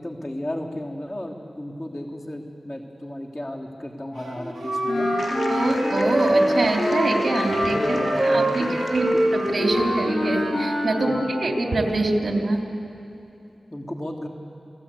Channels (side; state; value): both; normal; correlation 0.95